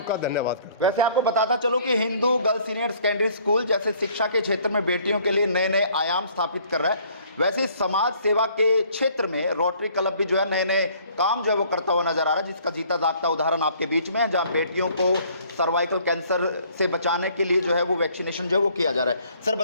का धन्यवाद करता हूं। वैसे आपको बताता चलो कि Hindu girls senior secondary school जैसे शिक्षा के क्षेत्र में बेटियों के लिए नए नए आयाम स्थापित कर रहा है, वैसे समाज सेवा के क्षेत्र में रोटरी क्लब भी जो है नए नए काम जो है वो करता हुआ नजर आ रहा है, जिसका जीता जागता उदाहरण आपके बीच में है, जहां बेटियों को सर्वाइकल कैंसर से बचाने के लिए जो है वो वैक्सीनेशन जो है वो किया जा रहा है। सर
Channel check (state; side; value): inverted; both; correlation -0.59